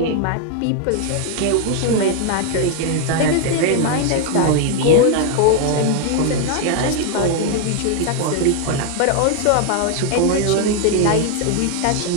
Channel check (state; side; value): different; both; correlation 0.01